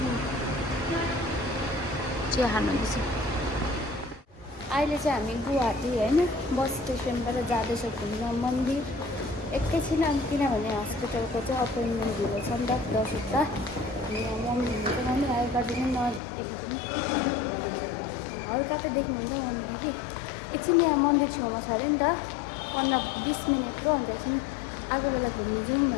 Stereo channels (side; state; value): right; drops out; at 16.2 s